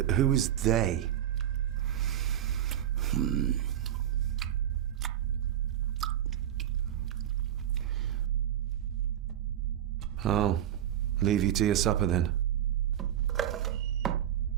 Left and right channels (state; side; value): quieter; left; 11.0 dB